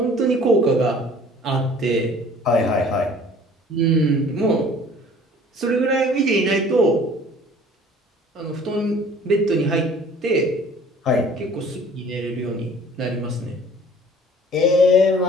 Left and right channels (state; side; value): normal; both; correlation 0.50